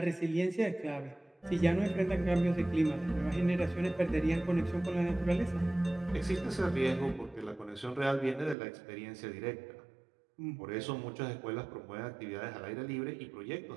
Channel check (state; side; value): drops out; left; at 8.6 s